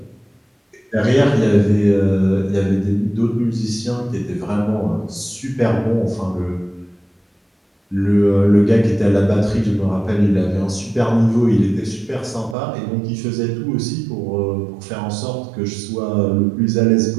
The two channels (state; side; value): drops out; left; at 12.6 s